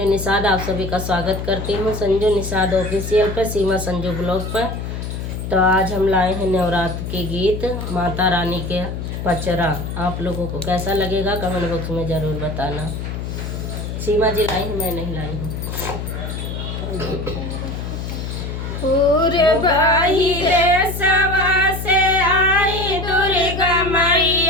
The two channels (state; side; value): noise; left; hum, 6 dB below the sound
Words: निषाद आप सभी का स्वागत करती हूँ संजू निषाद ऑफिशियल पर, सीमा संजू ब्लॉग पर। तो आज हम लाए हैं नवरात्र के गीत, माता रानी के पचरा। आप लोगों को कैसा लगेगा कमेंट बॉक्स में ज़रूर बताना। सीमा जी लाई है, मैं नहीं लाई हूँ। भाई देशवा से आई दुर्गा